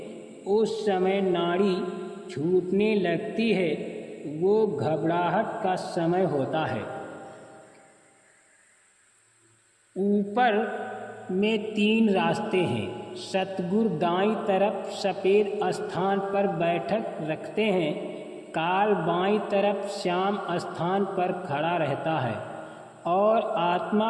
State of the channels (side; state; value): both; identical; correlation 1.00